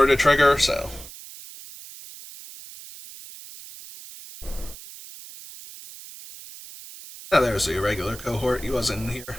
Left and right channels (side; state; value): right; noise; hiss, 16 dB below the sound